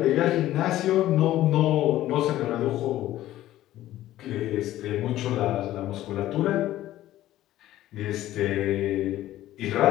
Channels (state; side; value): quieter; right; 14.3 dB